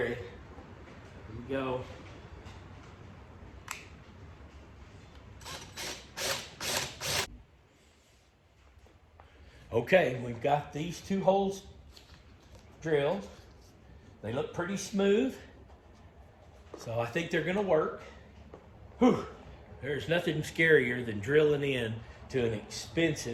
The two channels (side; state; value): both; identical; correlation 1.00